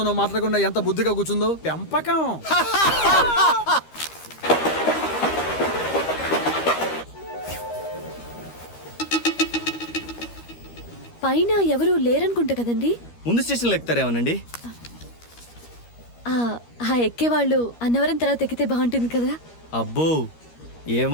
మాట్లాడకుండా ఎంత బుద్ధిగా కూర్చుందో. పెంపకం. పైన ఎవరు లేరనుకుంటా కదండి? ముందు స్టేషన్లో ఎక్కుతారేమోనండి. ఆ ఎక్కేవాళ్ళు అన్నవరం తర్వాత ఎక్కితే బాగుంటుంది కదా. అబ్బో,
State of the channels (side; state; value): right; late; 13 ms